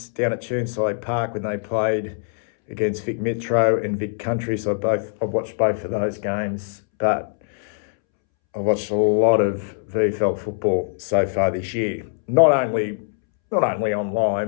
down at Churnside Park when they played against Vic Metro and Vic Country. So I've watched both of those games, but I've watched a lot of VFL football so far this year. Not only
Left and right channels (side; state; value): right; silent; 64 dB below the other